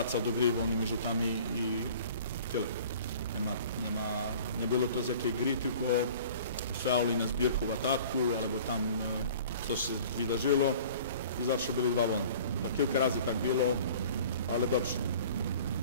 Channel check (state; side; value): inverted; both; correlation -0.47